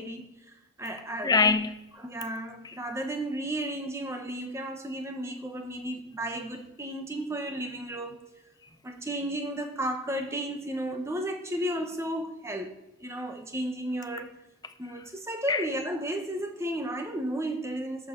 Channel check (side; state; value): both; normal; correlation 0.28